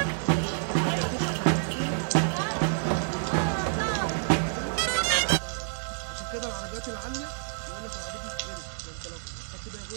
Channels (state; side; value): silent; left; digital silence